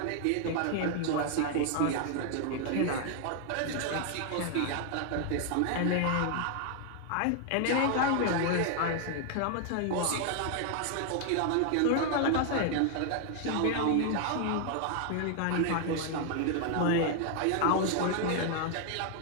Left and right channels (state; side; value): different; both; correlation 0.00